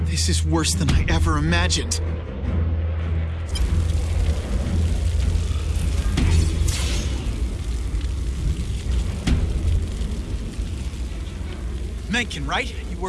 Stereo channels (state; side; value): identical; both; correlation 1.00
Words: is worse than I ever imagined. Mencken, right? You